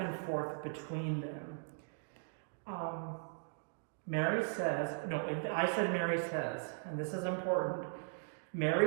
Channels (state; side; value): silent; left; digital silence